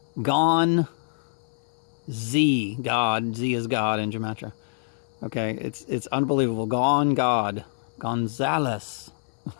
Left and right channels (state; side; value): silent; right; 61 dB below the other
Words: Z, God. Z is God in gematria. Okay, it's unbelievable. God, Gonzales.